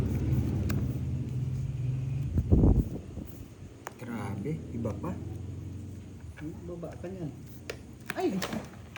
Grabe, iba pa. Baba ka niyan. Ay,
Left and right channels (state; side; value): identical; both; correlation 1.00